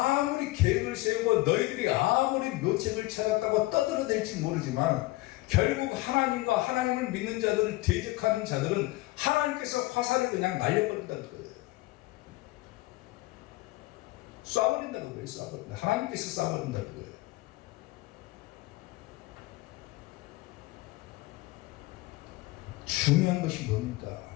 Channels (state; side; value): quieter; right; 19.9 dB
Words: 계획을 세우고 너희들이 아무리 묘책을 찾았다고 떠들어댈지 모르지만 결국 하나님과 하나님을 믿는 자들을 대적하는 자들은 하나님께서 화살을 그냥 날려버린다는 거예요. 쏴버린다는 거예요. 쏴버린다. 하나님께서 쏴버린다는 거예요. 중요한 것이 뭡니까,